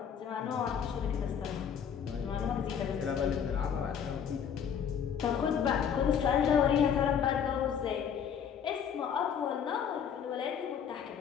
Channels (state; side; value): quieter; right; 7.9 dB